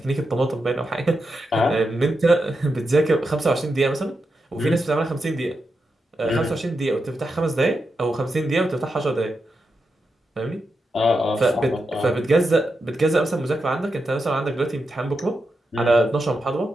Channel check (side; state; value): both; normal; correlation 0.87